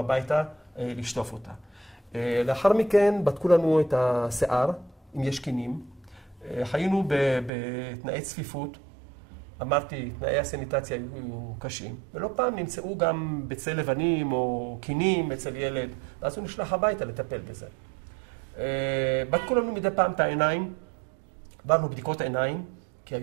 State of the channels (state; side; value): drops out; left; at 7.5 s